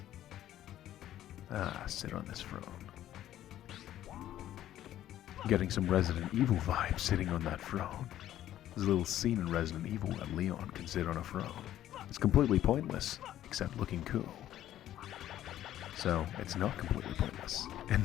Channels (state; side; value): quieter; right; 12.5 dB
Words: Ah, sit on this throne. Getting some Resident Evil vibes sitting on that throne. There's a little scene in Resident Evil where Leon can sit on a throne. It's completely pointless, except looking cool. So, it's not completely pointless, in